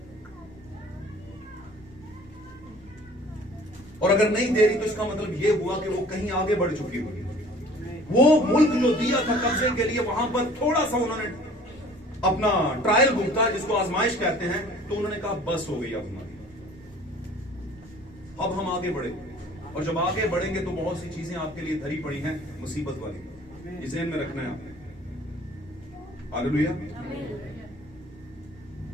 और अगर नहीं दे रही तो इसका मतलब यह हुआ कि वो कहीं आगे बढ़ चुकी हुई। वो मुल्क जो दिया था कब्जे के लिए, वहां पर थोड़ा सा उन्होंने अपना ट्रायल भुगता, जिसको आजमाइश कहते हैं, तो उन्होंने कहा बस हो गई अब हमारी, अब हम आगे बढ़े। और जब आगे बढ़ेंगे तो बहुत सी चीजें आपके लिए धरी पड़ी हैं मुसीबत वाली, इसे ध्यान में रखना है आपने। हालेलुया।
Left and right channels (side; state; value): both; normal; correlation 0.50